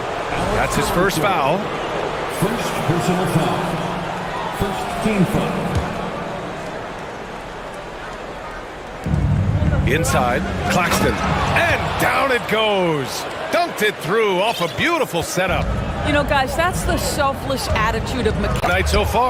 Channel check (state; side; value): identical; both; correlation 1.00